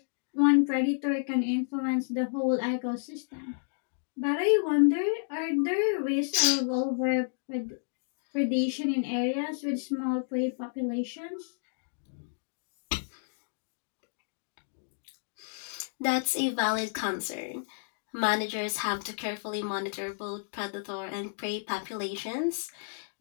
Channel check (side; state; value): right; silent; digital silence